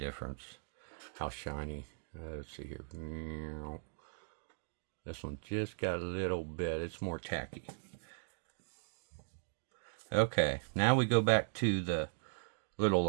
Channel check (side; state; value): left; silent; digital silence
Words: how shiny. Let's see here. This one just got a little bit, it's more tacky. Okay, now we go back to the little